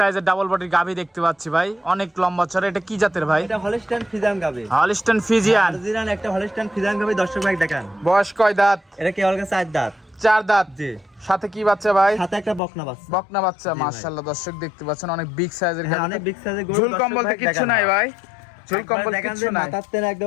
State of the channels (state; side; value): drops out; right; at 12.6 s